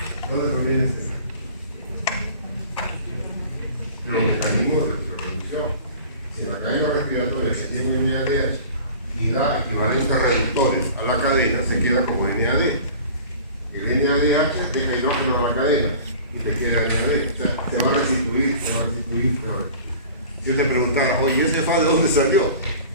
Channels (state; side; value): inverted; both; correlation -0.43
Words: ¿De dónde proviene este NAD? De los mecanismos de reproducción. Si la cadena respiratoria se tiene un NADH y da equivalentes reductores a la cadena, se queda como NAD. El NADH deja hidrógeno a la cadena y te queda NAD. O sea, te va a restituir. Si yo te preguntara, oye, ¿ese FAT de dónde salió?